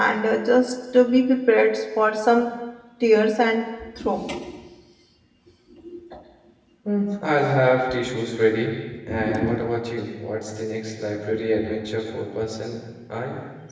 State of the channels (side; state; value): both; identical; correlation 1.00